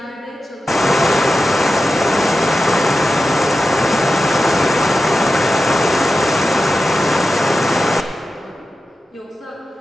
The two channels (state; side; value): normal; both; correlation 0.92